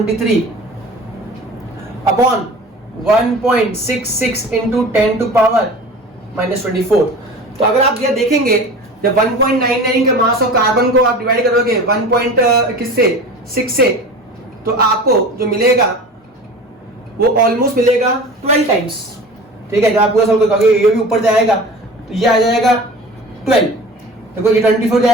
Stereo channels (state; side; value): normal; both; correlation 0.38